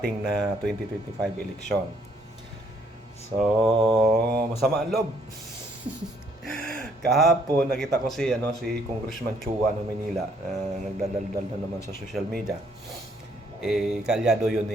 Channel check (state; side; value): normal; both; correlation 0.67